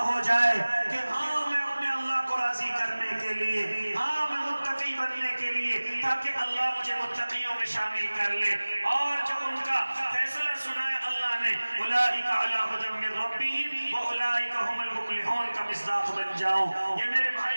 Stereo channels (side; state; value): both; inverted; correlation -1.00